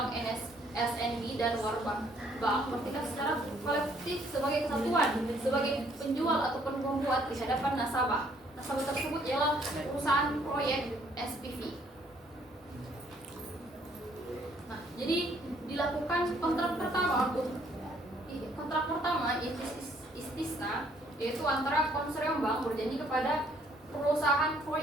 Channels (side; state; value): both; normal; correlation 0.65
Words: (SNB), dan Warbank Bank bertindak secara kolektif sebagai kesatuan, sebagai penjual ataupun pembuat di hadapan nasabah. Nasabah tersebut ialah perusahaan proyek SPV. Nah, jadi dilakukan kontrak pertama istisna, yaitu antara konsorsium bank berjanji kepada perusahaan